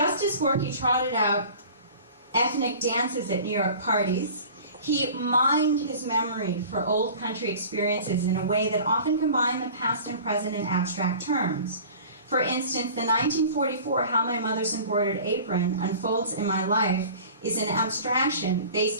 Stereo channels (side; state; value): both; inverted; correlation -0.42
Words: as Gorky trotted out ethnic dances at New York parties, he mined his memory for old country experiences in a way that often combined the past and present in abstract terms. For instance, the 1944 How My Mother's Embroidered Apron Unfolds in My Life is an abstraction